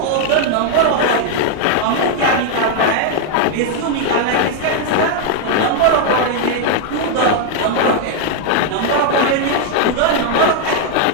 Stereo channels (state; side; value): different; both; correlation 0.00